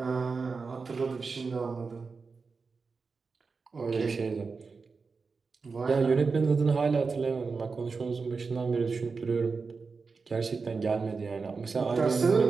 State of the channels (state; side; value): quieter; left; 4.6 dB